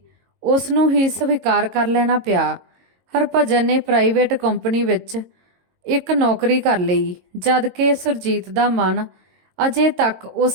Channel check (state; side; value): late; left; 22 ms